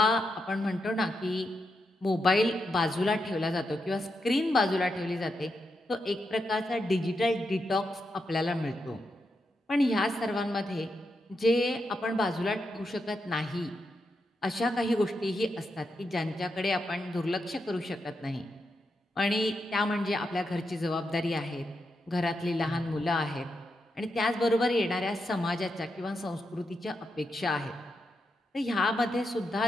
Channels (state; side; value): normal; both; correlation 0.85